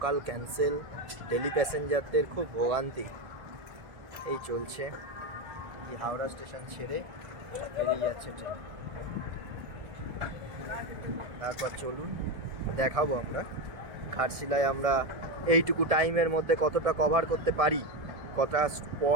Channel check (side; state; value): left; late; 1.6 ms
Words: ক্যান্সেল, ডেলি প্যাসেঞ্জারদের খুব ভোগান্তি এই চলছে। এই হাওড়া স্টেশন ছেড়ে বেরিয়ে যাচ্ছে ট্রেন। তারপর চলুন দেখাবো আমরা ঘাটশিলায় আমরা এইটুকু টাইমের মধ্যে কতটা কভার করতে পারি, কটা